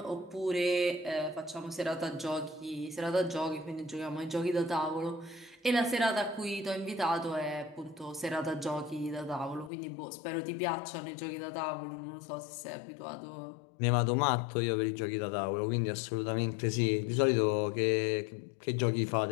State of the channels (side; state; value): right; drops out; at 9.7 s